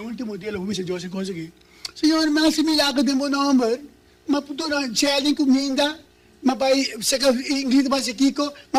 dia, lo pupisa Deus e consegui. Senhor, mas se milagre de meu nome, mas puto na challenge comida, mas vai se ingrediente mas kiko,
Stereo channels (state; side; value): identical; both; correlation 1.00